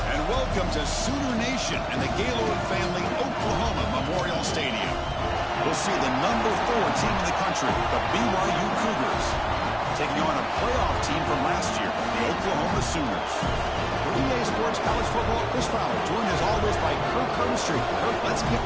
And welcome to Sooner Nation and the Gaylord family Oklahoma Memorial Stadium. We'll see the number 4 team in the country, the BYU Cougars, taking on a playoff team from last year, the Oklahoma Sooners. For EA Sports College Football, Chris Fowler, joined as always by Kirk Herbstreit. Kirk, let's get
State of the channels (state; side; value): identical; both; correlation 1.00